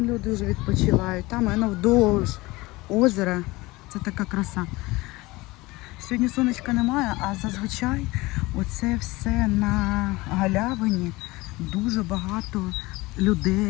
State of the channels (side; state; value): right; quieter; 21.3 dB